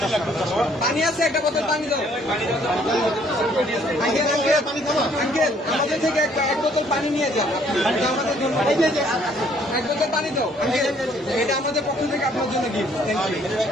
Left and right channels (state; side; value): normal; both; correlation 0.63